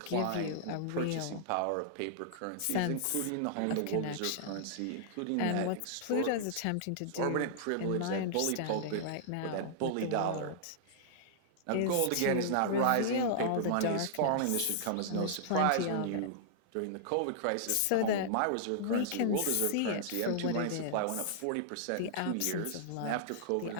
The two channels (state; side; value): different; both; correlation -0.01